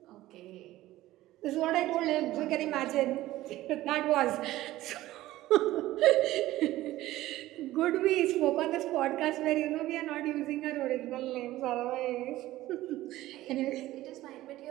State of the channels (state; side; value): quieter; left; 16.0 dB